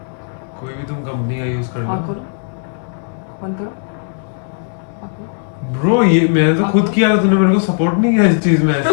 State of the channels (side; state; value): right; silent; digital silence